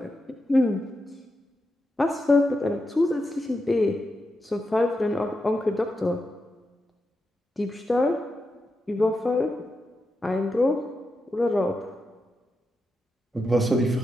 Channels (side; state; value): both; normal; correlation 0.87